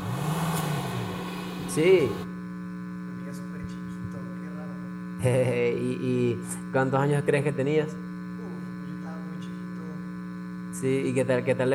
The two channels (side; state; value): both; identical; correlation 1.00